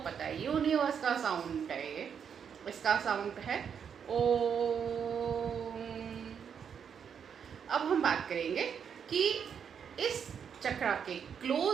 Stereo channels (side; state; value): left; quieter; 7.4 dB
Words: है, यूनिवर्स का साउंड है ये। इसका साउंड है ओम। अब हम बात करेंगे कि इस चक्रा के